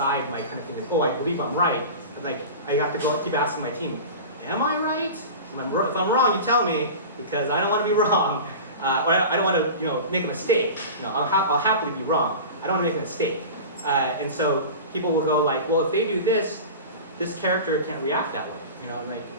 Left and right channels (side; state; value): both; inverted; correlation -0.32